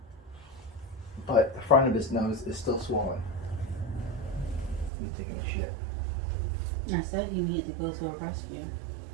But the front of his nose is still swollen. He's taking a shit. I said he needed to go to a rescue.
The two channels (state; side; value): drops out; left; at 4.9 s